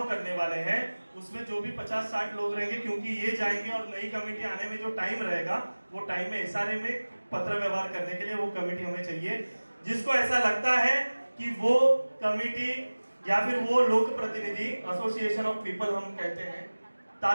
करने वाले हैं, उसमें जो भी 50-60 लोग रहेंगे, क्योंकि ये जाएंगे और नई कमेटी आने में जो टाइम रहेगा वो टाइम में SRA में पत्र व्यवहार करने के लिए वो कमेटी हमें चाहिए. जिसको ऐसा लगता है कि वो कमेटी या फिर वो लोक प्रतिनिधि, एसोसिएशन ऑफ पीपल हम कहते हैं,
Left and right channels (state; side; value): inverted; both; correlation -1.00